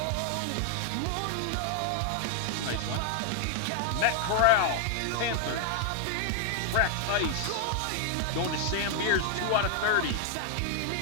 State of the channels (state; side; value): different; both; correlation 0.00